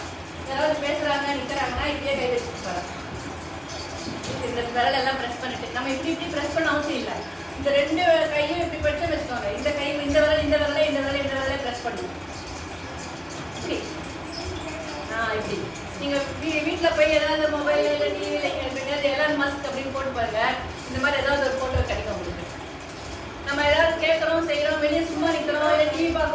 யாராவது பேசுறாங்க நிற்கிறாங்கன்னா இப்படியே கை வச்சுருப்பாங்க. இந்த விரல் எல்லாம் ப்ரெஸ் பண்ணிட்டு நம்ம இப்படி ப்ரெஸ் பண்ண அவசியம் இல்லை. இந்த 2 கையும் இப்படி படிச்சு வச்சுக்கோங்க. இந்த கை இந்த விரலை ப்ரெஸ் பண்ணுங்க. இப்படி இப்படி நீங்கள் வீட்டில் போய் ஏதாவது மொபைல் இல்லை டிவியில் எலான் மஸ்க் அப்படின்னு போட்டு பாருங்க. இந்த மாதிரி ஏதாவது ஒரு ஃபோட்டோ கிடைக்கும் உங்களுக்கு. நம்ம ஏதாவது கேட்குறோம் செய்கிறோம் வெளியே சும்மா நிற்கிறோம் இல்லை டிவி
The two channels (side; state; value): both; identical; correlation 1.00